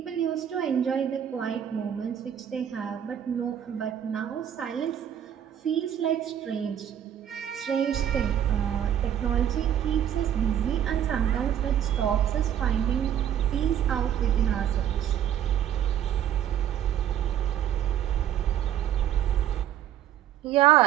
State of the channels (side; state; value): left; quieter; 10.1 dB